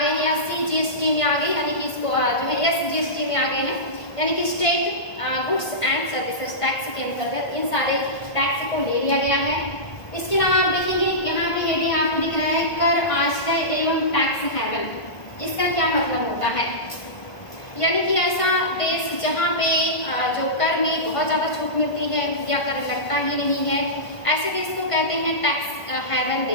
हैं या सीजीएसटी में आ गए, यानी कि इसको जो है एसजीएसटी में आ गए हैं, यानी कि state goods and services tax के अंतर्गत इन सारे टैक्स को ले लिया गया है। इसके अलावा आप देखेंगे यहाँ पे हेडिंग आपको दिख रहा है कर आश्रय एवं टैक्स हेवन। इसका क्या मतलब होता है, यानी कि ऐसा देश जहाँ पे जो कर में बहुत ज्यादा छूट मिलती है या कर लगता ही नहीं है, ऐसे देश को कहते हैं टैक्स हेवन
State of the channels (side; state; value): right; late; 1.5 ms